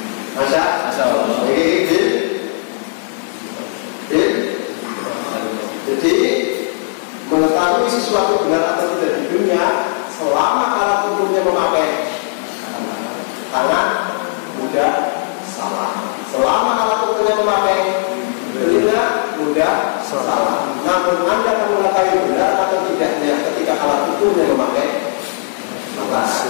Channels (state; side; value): silent; right; digital silence